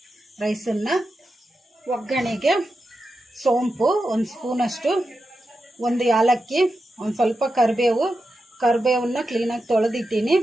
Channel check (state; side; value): normal; both; correlation 0.89